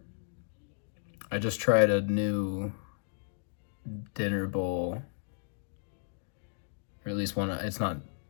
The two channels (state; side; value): silent; right; digital silence